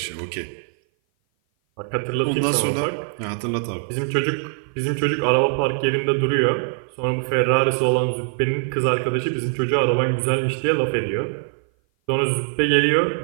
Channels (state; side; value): silent; left; 57 dB below the other